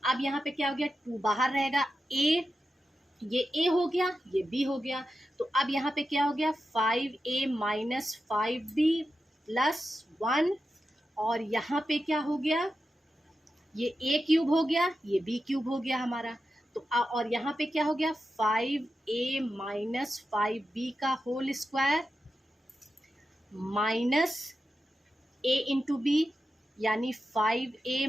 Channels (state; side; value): normal; both; correlation 0.90